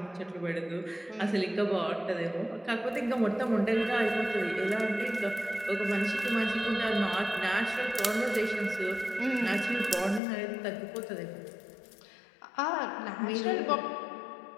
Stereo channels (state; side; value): drops out; right; at 10.2 s